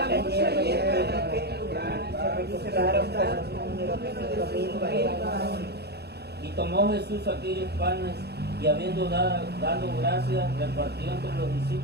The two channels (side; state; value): left; late; 0.48 ms